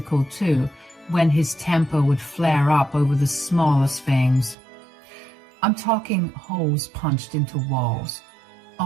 too, when his temper would flare up over the smallest things. I'm talking holes punched into walls,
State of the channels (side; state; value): left; drops out; at 4.5 s